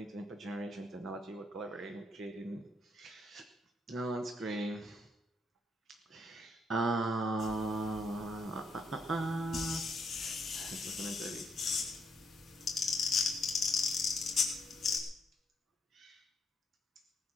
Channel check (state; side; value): normal; both; correlation 0.73